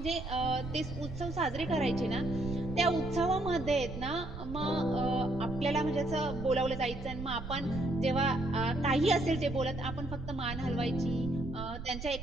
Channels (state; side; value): noise; right; rumble, 9 dB below the sound